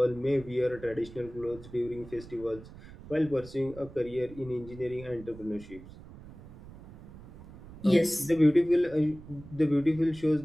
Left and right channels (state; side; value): noise; right; rumble, 17 dB below the sound